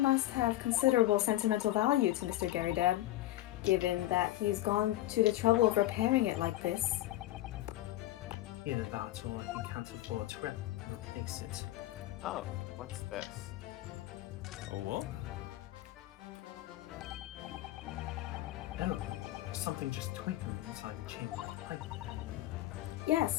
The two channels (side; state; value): right; quieter; 15.6 dB